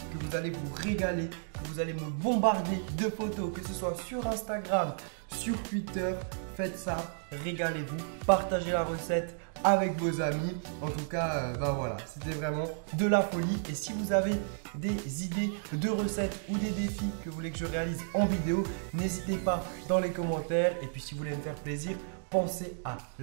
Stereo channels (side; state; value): left; silent; digital silence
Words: que vous allez vous régaler, que vous allez me bombarder de photos, que ce soit sur Instagram, sur Twitter. Faites ça, régalez-vous, partagez la recette avec vos amis. En tout cas, voilà, c'était vraiment de la folie. Et si vous avez des idées de recettes ou des défis que vous voulez que je réalise en vidéo, n'hésitez pas dans les commentaires. Et puis si vous voulez me faire plaisir, pensez à